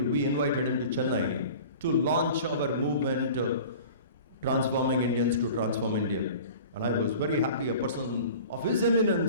invited him to Chennai to launch our movement, Transforming Indians to Transform India. And I was very happy a person of his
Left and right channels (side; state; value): both; inverted; correlation -0.41